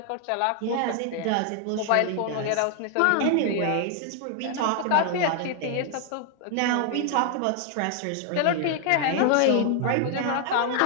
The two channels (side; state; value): both; different; correlation 0.00